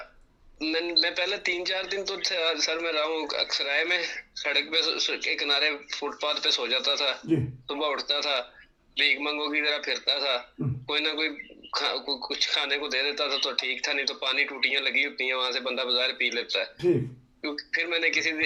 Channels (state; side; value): identical; both; correlation 1.00